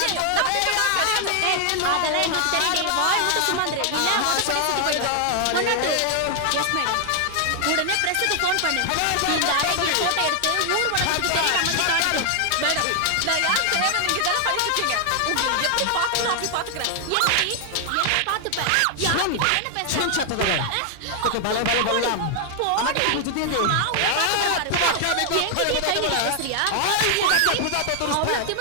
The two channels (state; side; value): different; both; correlation 0.00